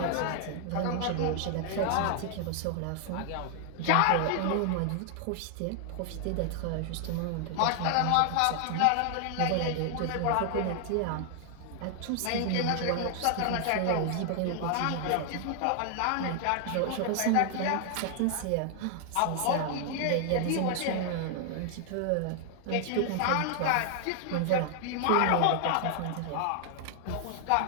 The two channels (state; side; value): different; both; correlation 0.00